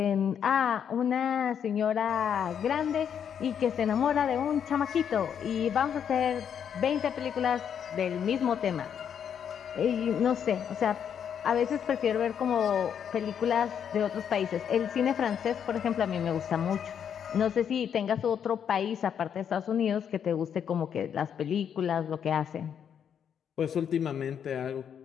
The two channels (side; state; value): right; quieter; 8.2 dB